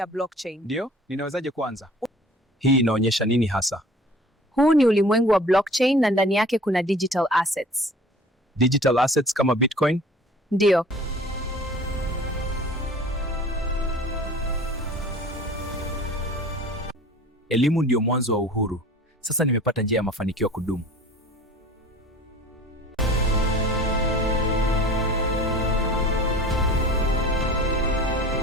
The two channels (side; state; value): both; normal; correlation 0.45